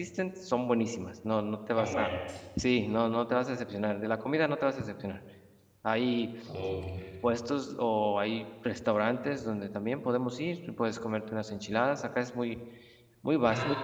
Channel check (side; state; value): both; identical; correlation 1.00